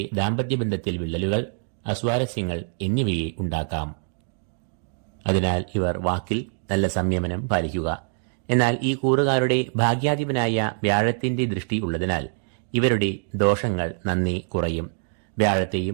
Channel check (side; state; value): left; silent; digital silence